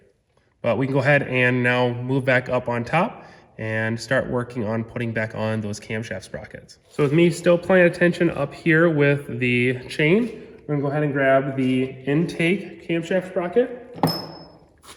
But we can go ahead and now move back up on top and start working on putting back on those camshaft sprockets. So with me still paying attention up here with the chain, we're gonna go ahead and grab the intake camshaft sprocket.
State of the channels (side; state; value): both; identical; correlation 1.00